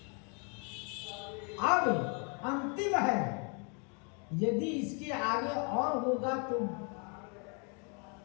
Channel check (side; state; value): right; quieter; 36.3 dB